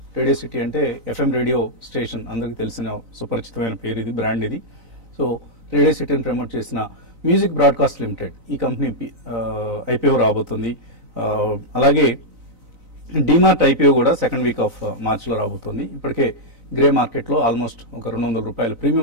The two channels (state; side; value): late; left; 4.0 ms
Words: అంటే FM రేడియో స్టేషన్, అందరికి తెలిసిన సుపరిచితమైన పేరు ఇది, బ్రాండ్ ఇది. సో రేడియో సిటీని ప్రమోట్ చేసిన మ్యూజిక్ బ్రాడ్కాస్ట్ లిమిటెడ్ ఈ కంపెనీ IPO రాబోతుంది. అలాగే డిమార్ట్ IPO కూడా సెకండ్ వీక్ ఆఫ్ మార్చ్లో రాబోతుంది. ఇప్పటికే గ్రే మార్కెట్లో ఆల్మోస్ట్ ఒక ₹200